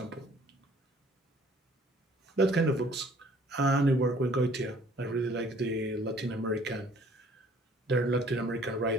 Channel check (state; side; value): normal; both; correlation 0.57